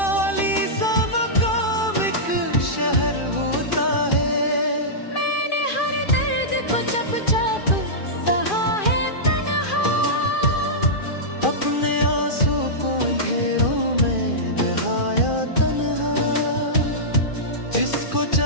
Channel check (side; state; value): right; late; 2.4 ms